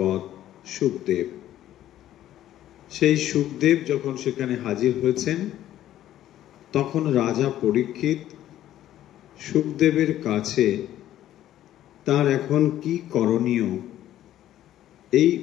শুকদেব। সেই শুকদেব যখন সেখানে হাজির হয়েছেন, তখন রাজা পরীক্ষিত শুকদেবের কাছে তার এখন কি করণীয় এই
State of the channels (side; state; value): right; quieter; 12.7 dB